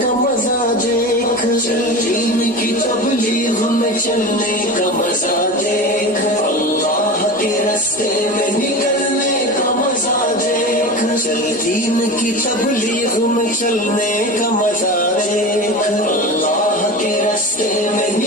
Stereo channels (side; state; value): both; normal; correlation 0.29